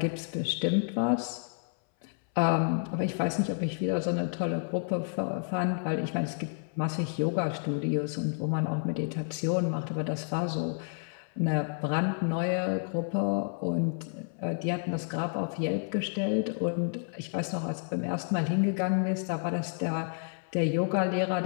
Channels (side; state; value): right; silent; 58 dB below the other